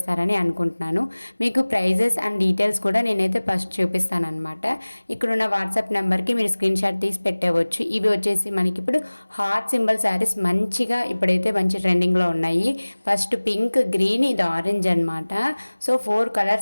అనుకుంటున్నాను. మీకు ప్రైజెస్ అండ్ డీటెయిల్స్ కూడా నేనైతే ఫస్ట్ చూపిస్తానమాట. ఇక్కడున్న వాట్సాప్ నెంబర్కి మీరు స్క్రీన్ షాట్ తీసి పెట్టవచ్చు. ఇవి వచ్చేసి మనకి ఇప్పుడు హార్ట్ సింబల్ శారీస్ మంచిగా ఇప్పుడైతే మంచి ట్రెండింగ్లో ఉన్నాయి. ఫస్ట్ పింక్, గ్రీన్, ఇది ఆరెంజ్ అనమాట. సో 4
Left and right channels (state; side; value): inverted; both; correlation -1.00